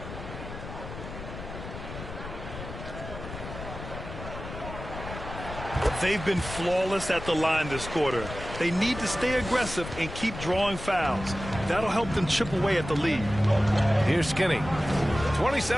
They've been flawless at the line this quarter. They need to stay aggressive and keep drawing fouls. That'll help them chip away at the lead. Here's Skinny.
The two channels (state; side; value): noise; left; rumble, 10 dB below the sound